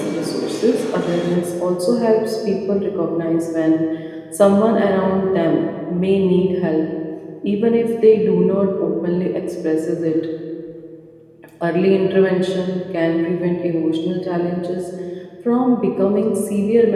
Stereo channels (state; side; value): identical; both; correlation 1.00